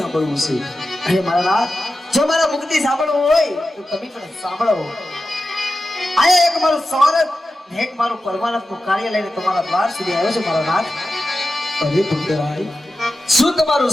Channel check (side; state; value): both; normal; correlation 0.92